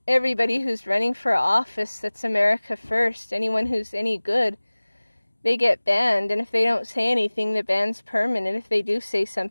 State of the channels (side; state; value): both; inverted; correlation -1.00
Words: everybody who's running for office that's America First, anyone who's any good, they get banned. And if they don't say anything, the ban's permanent. If they do say